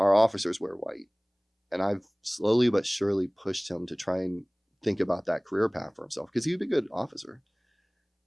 officers wear white. And I've slowly but surely pushed him to try and think about that career path for himself because he would be a good officer.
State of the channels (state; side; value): identical; both; correlation 1.00